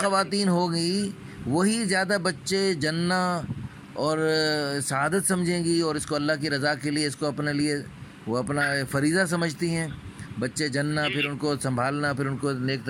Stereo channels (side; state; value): both; identical; correlation 1.00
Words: ہوگی وہی زیادہ بچے جننا اور سعادت سمجھیں گی، اور اس کو اللہ کی رضا کے لیے، اس کو اپنے لیے وہ اپنا فریضہ سمجھتی ہیں. بچے جننا، پھر ان کو سنبھالنا، پھر ان کو نیک